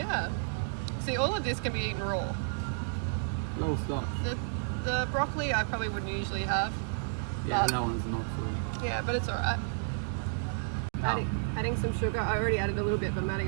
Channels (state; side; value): silent; left; digital silence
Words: See, all of this can be eaten raw. Low starch. The broccoli I probably wouldn't usually have. Yeah, that one's not so. Yeah, but it's alright. Adding some sugar. I already added a little bit, but I'm adding